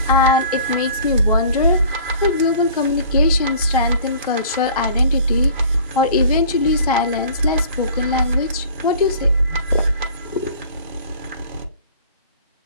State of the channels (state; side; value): inverted; both; correlation -0.48